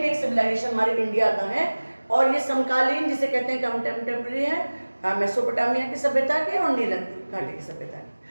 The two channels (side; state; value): both; inverted; correlation -1.00